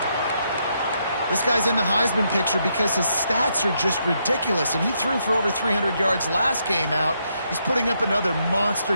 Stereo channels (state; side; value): inverted; both; correlation -0.77